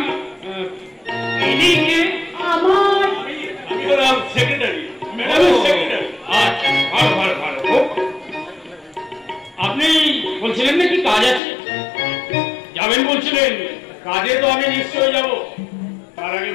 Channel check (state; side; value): drops out; right; at 11.4 s